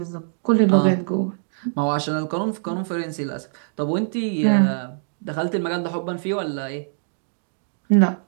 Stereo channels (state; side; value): silent; left; digital silence